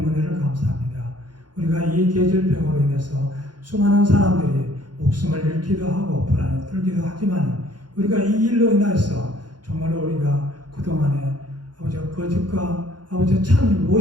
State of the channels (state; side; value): late; left; 0.70 ms